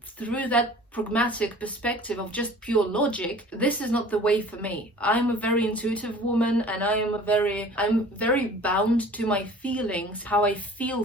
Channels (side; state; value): both; normal; correlation 0.46